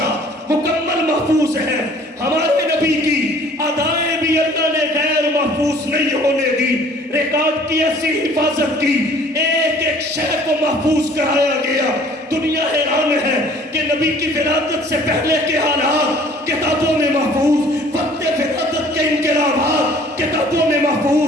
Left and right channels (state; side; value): normal; both; correlation 0.53